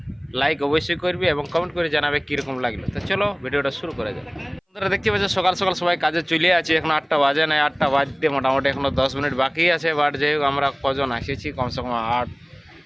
লাইক অবশ্যই করবে এবং কমেন্ট করে জানাবে কীরকম লাগলো। তো চলো ভিডিওটা শুরু করা যায়। বন্ধুরা, দেখতে পাচ্ছ সকাল সকাল সবাই কাজে চলে আছে। এখন 8টা বাজে নাই, 8টা বাজতে মোটামুটি এখনও 10 মিনিট বাকি আছে। বাট যাই হোক, আমরা কজন এসেছি, কমসে কম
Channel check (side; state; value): both; identical; correlation 1.00